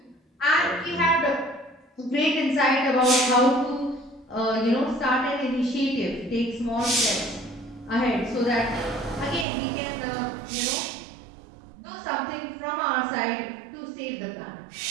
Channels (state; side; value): drops out; left; at 9.5 s